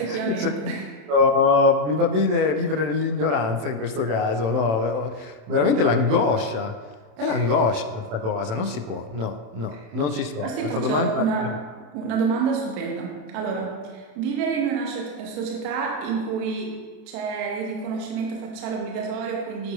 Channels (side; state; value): left; late; 27 ms